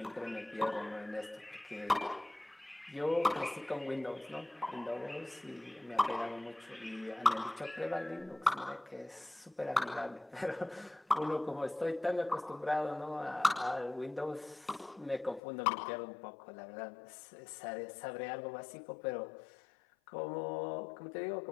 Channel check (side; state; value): right; drops out; at 15.4 s